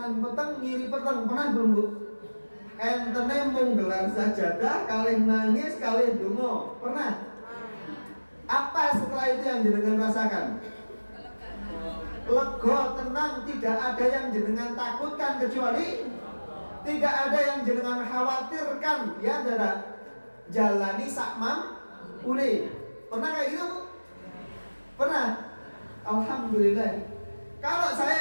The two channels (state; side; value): inverted; both; correlation -1.00